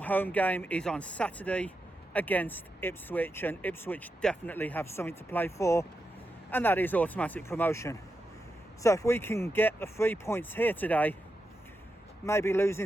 game is on Saturday against Ipswich, and Ipswich definitely have something to play for, and that is automatic promotion. So if we can get the 3 points here today, maybe losing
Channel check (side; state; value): both; normal; correlation 0.87